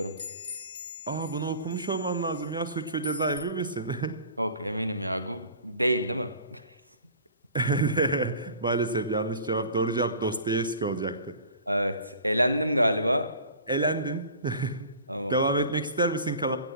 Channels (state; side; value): inverted; both; correlation -0.44